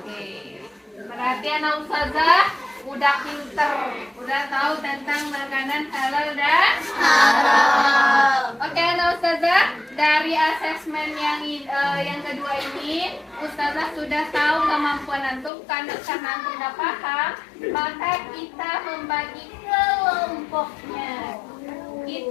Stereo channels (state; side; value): drops out; right; at 15.5 s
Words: Berarti anak ustazah udah pinter, udah tahu tentang makanan halal dan haram. Oke, anak ustazah, dari asesmen yang kedua ini, ustazah sudah tahu kemampuan antum. Karena antum sudah paham, maka kita membagi kelompoknya.